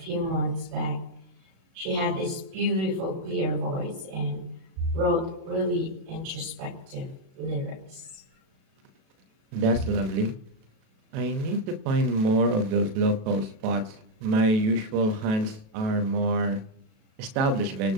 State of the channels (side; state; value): left; late; 37 ms